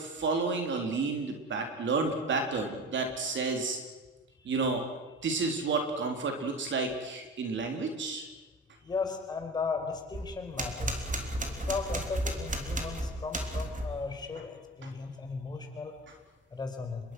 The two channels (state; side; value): normal; both; correlation 0.33